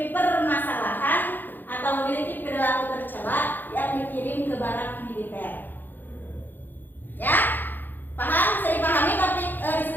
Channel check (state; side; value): late; right; 0.089 ms